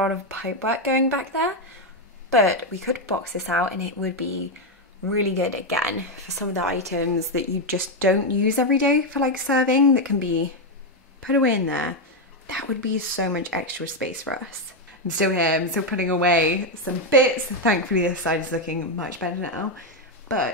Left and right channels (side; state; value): both; normal; correlation 0.05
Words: of pipe work going back there, but we could box this out and it would be really good again for some of the items that you just don't use every day for like serving, that can be put away in there. That would be so much extra space for us. I'm still here, I'm still putting away some bits. Thankfully this side is looking much better now,